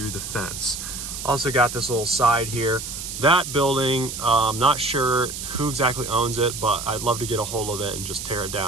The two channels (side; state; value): right; noise; hiss, 7 dB below the sound